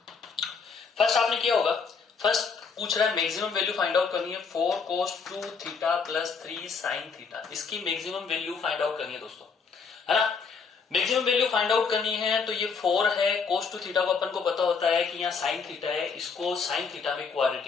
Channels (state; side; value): quieter; right; 5.4 dB